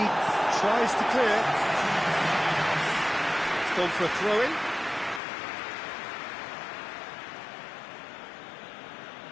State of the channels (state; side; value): drops out; right; at 5.2 s